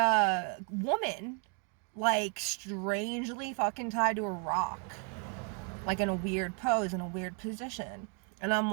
woman like strangely fucking tied to a rock, like in a weird pose, in a weird position. And I'm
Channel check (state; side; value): quieter; left; 38.6 dB